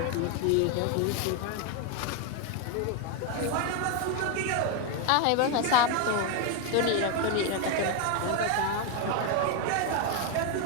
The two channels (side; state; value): both; different; correlation 0.01